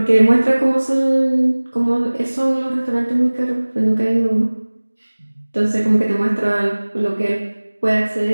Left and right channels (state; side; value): inverted; both; correlation -1.00